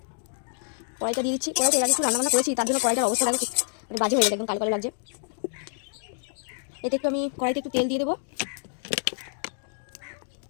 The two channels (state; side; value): silent; right; digital silence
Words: কড়াইটা এর আগে একটু রান্নাবান্না করেছি, তার জন্য কড়াইটার অবস্থা দেখো মানে বাজে হয়ে গেছে, একদম কালো কালো লাগছে। এতে একটু আমি কড়াইতে একটু তেল দিয়ে দেবো।